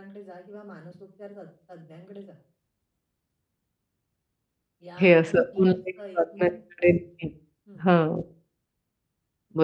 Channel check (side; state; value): both; identical; correlation 1.00